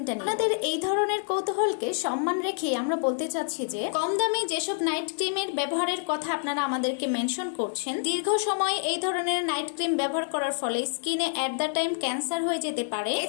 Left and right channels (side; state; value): right; silent; digital silence